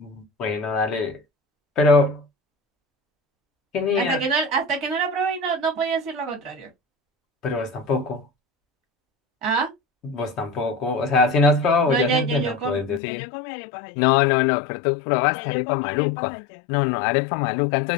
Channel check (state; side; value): drops out; right; at 13.0 s